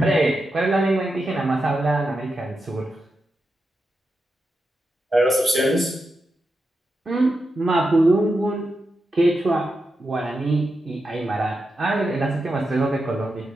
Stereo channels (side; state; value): both; normal; correlation 0.88